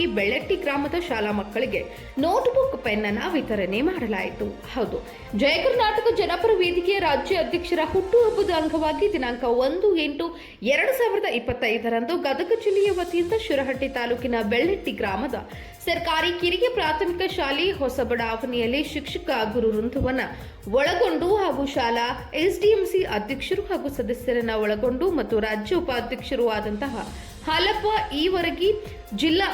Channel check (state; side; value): identical; both; correlation 1.00